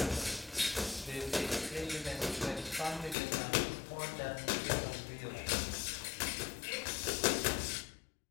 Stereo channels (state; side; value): drops out; right; at 3.2 s